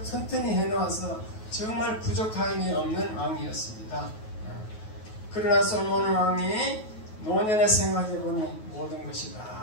튼튼히 해놓아서 정말 부족함이 없는 왕이었습니다. 그러나 솔로몬 왕이 노년에 생각해보니 모든 것이 다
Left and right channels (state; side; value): late; right; 9.3 ms